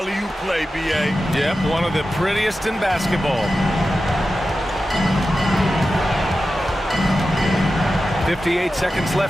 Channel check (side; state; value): both; normal; correlation 0.92